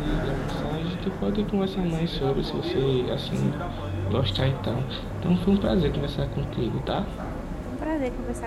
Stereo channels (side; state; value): both; identical; correlation 1.00